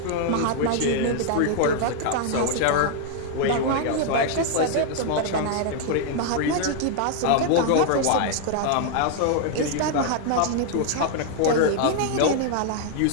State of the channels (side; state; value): both; different; correlation 0.00